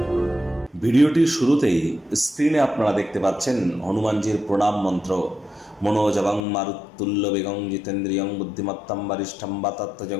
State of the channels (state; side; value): drops out; right; at 6.5 s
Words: ভিডিওটির শুরুতেই স্ক্রিনে আপনারা দেখতে পাচ্ছেন হনুমানজির প্রণাম মন্ত্র। মনোজবং মারুত্তুল্য বেগং জিতেন্দ্রিয়ং বুদ্ধিমত্তম বরিষ্ঠম